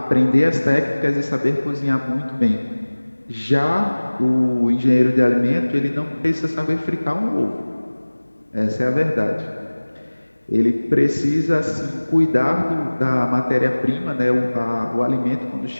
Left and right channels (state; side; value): inverted; both; correlation -1.00